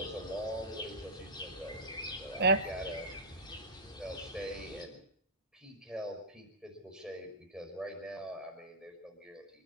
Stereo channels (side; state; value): both; normal; correlation -0.14